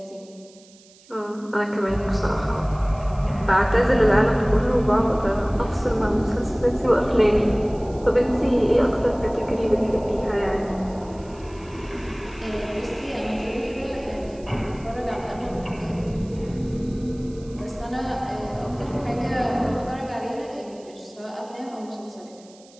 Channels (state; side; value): noise; right; hiss, 26 dB below the sound